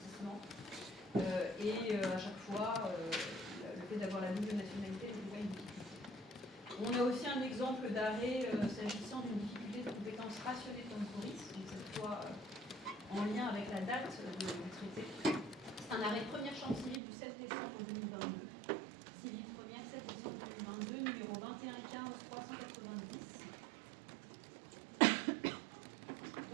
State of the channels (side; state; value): left; drops out; at 17.0 s